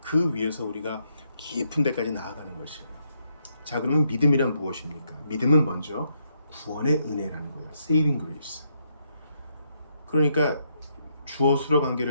그 위에서 우리가 깊은 데까지 나아가는 것이에요. 자, 그러면 믿음이란 무엇입니까? 믿음은 먼저 구원의 은혜라는 거예요. Saving grace. 그러니까 주어 수로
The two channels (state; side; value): inverted; both; correlation -0.77